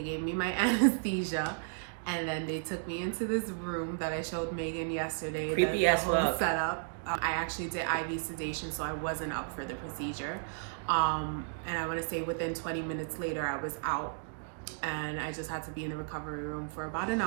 gave me my anesthesia, and then they took me into this room that I showed Megan yesterday. Creepy as fuck. Setup. I actually did IV sedation, so I wasn't up for the procedure. And I want to say within 20 minutes later, I was out. And I just had to be in the recovery room for about an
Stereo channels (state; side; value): silent; left; digital silence